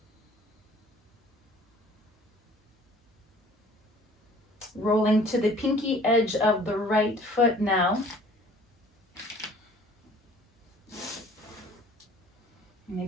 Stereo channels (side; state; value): both; normal; correlation 0.51